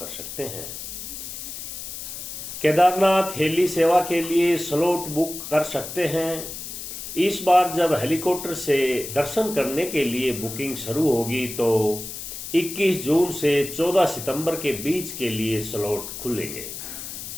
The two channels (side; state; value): left; noise; hiss, 9 dB below the sound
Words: सकते हैं। केदारनाथ हेली सेवा के लिए स्लॉट बुक कर सकते हैं। इस बार जब हेलीकॉप्टर से दर्शन करने के लिए बुकिंग शुरू होगी तो 21 जून से 14 सितंबर के बीच के लिए स्लॉट खुलेंगे।